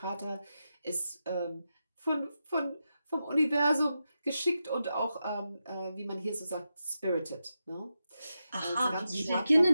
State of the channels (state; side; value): inverted; both; correlation -0.88